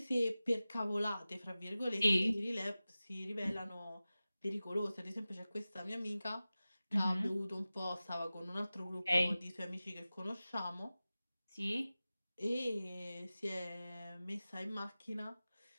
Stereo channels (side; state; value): both; inverted; correlation -0.96